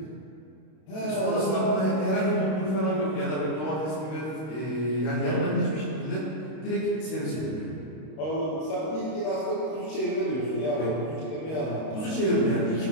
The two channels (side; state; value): right; late; 32 ms